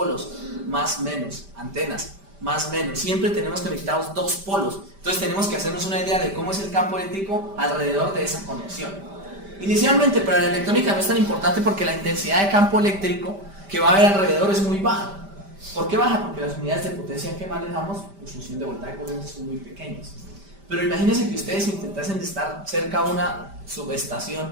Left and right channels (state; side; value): late; left; 5.1 ms